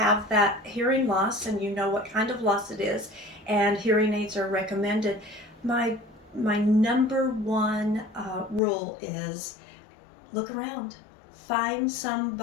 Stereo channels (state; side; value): drops out; right; at 8.6 s